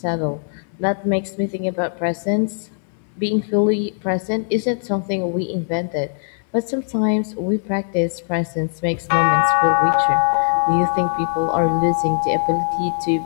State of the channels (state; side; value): silent; right; digital silence